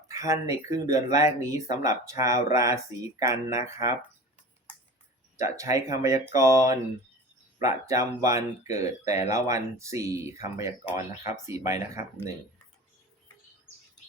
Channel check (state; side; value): normal; both; correlation 0.36